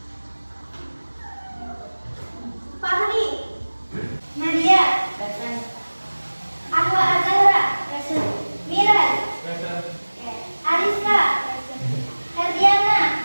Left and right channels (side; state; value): both; inverted; correlation -1.00